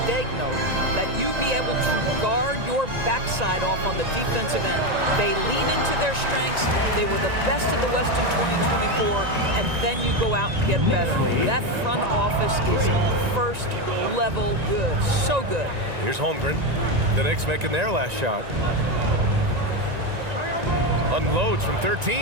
Daigneault that you be able to guard your backside off on the defensive end. They lean into their strengths. They were the best in the West in 2024, and then you go out and get better. That front office is first level good. So good. Here's Holmgren. The Knicks making their last shot. Unloads from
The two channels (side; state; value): left; late; 1.9 ms